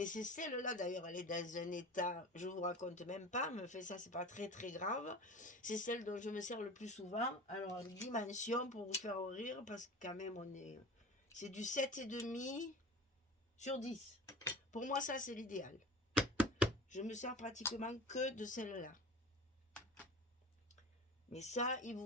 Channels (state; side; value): normal; both; correlation 0.35